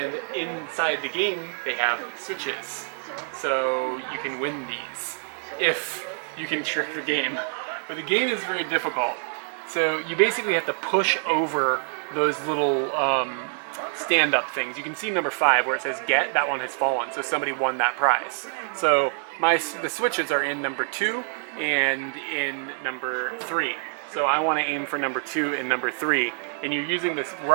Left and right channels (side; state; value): left; silent; 60 dB below the other